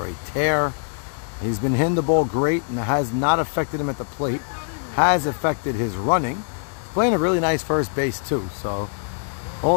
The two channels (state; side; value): silent; right; 63 dB below the other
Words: a tear. He's been hitting the ball great and it has not affected him at the plate. Has affected his running. Playing a really nice first base too. So